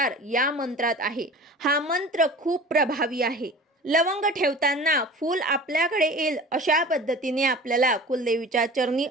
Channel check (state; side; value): normal; both; correlation 0.39